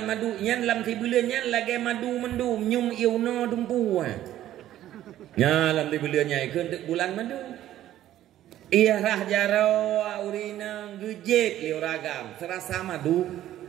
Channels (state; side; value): quieter; left; 12.9 dB